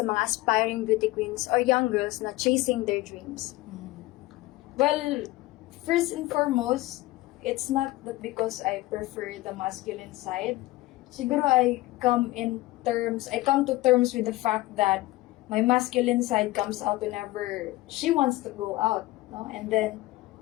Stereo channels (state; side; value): quieter; right; 18.5 dB